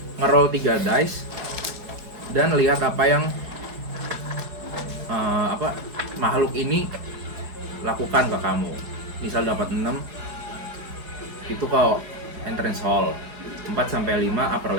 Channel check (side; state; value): left; late; 4.8 ms